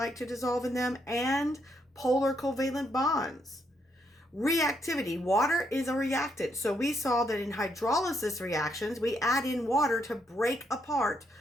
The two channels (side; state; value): both; normal; correlation 0.76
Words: to dissolve in them, and polar covalent bonds. Reactivity. Water is a reactant. So we saw that in hydrolysis reactions, we add in water to break apart